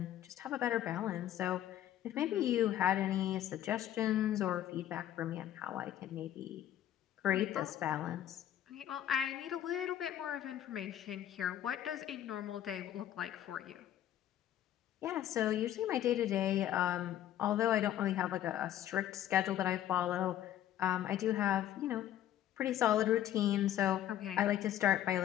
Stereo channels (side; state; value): right; quieter; 11.8 dB